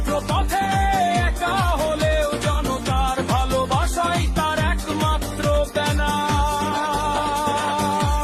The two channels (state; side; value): identical; both; correlation 1.00